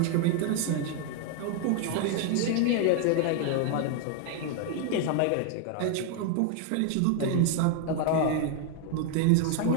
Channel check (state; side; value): different; both; correlation 0.00